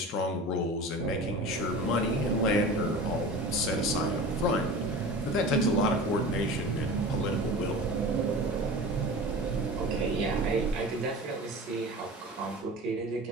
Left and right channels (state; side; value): normal; both; correlation 0.35